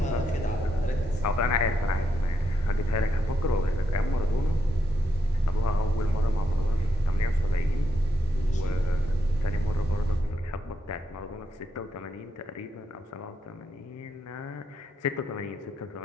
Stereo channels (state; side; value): normal; both; correlation 0.81